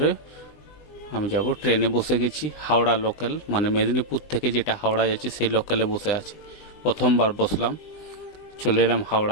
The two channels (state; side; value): late; right; 20 ms